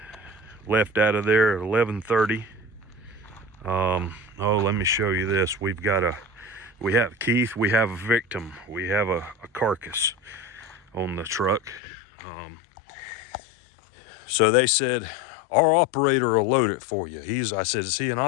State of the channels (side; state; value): right; drops out; at 11.8 s